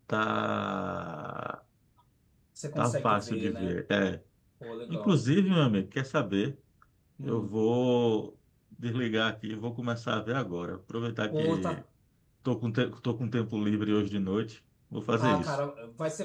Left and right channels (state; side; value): identical; both; correlation 1.00